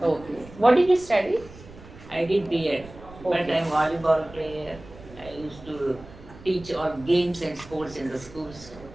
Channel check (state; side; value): noise; right; rumble, 19 dB below the sound